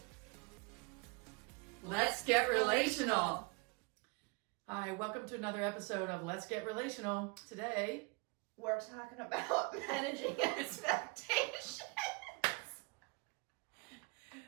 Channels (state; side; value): quieter; left; 30.1 dB